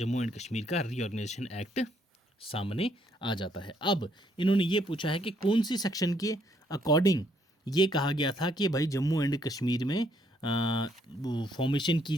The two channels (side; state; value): both; normal; correlation 0.70